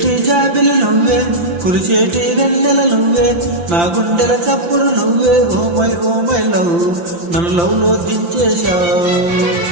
జాబిలి నువ్వే, కురిచేటి వెన్నెల నువ్వే, నా గుండెల చప్పుడు నువ్వే. ఓ మై లవ్, నన్ను లవ్ లో దించేశావు.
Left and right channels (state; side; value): late; left; 5.8 ms